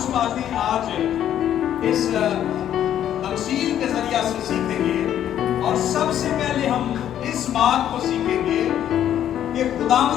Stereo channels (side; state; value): right; quieter; 10.7 dB